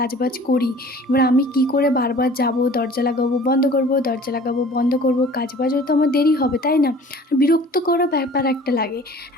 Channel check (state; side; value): normal; both; correlation 0.47